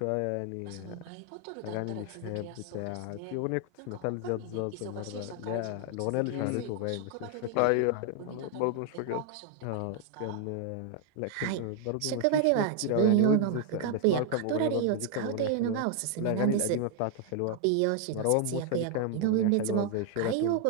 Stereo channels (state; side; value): different; both; correlation 0.00